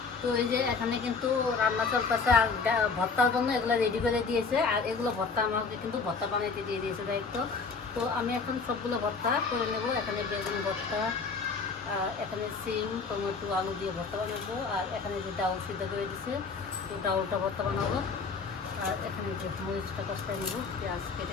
তো এই যে এখানে কিন্তু রান্না চলতেছে, আর ভর্তার জন্য এগুলো রেডি করে দিয়েছে। আর এগুলো ভর্তা আমাকে কিন্তু ভর্তা বানাইতে দিয়ে দিয়েছে দায়িত্ব। তো আমি এখন সবগুলো ভর্তা করে নেব। এখানে বেগুন ভর্তা, এখানে সিম, টমেটো, আলু দিয়ে ভর্তা বানাবো। আর এখানে যে ডাউল সিদ্ধ করে দিচ্ছে, তো ডাউলটা ভর্তা বানাবো। আর এখানে যে মরিচটা কষাই নেবো, পেঁয়াজ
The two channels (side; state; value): right; quieter; 4.8 dB